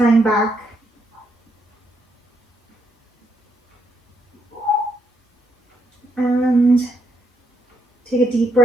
back. And take a deep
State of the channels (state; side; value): normal; both; correlation 0.77